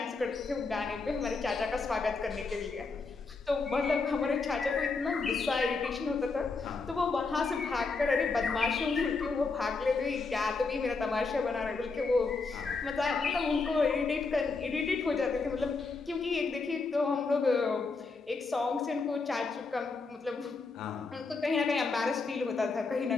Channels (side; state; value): right; quieter; 4.2 dB